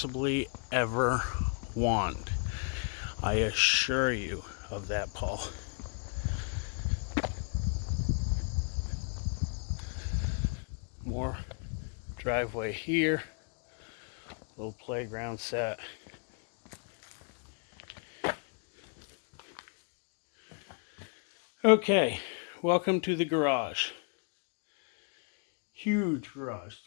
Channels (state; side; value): quieter; right; 39.9 dB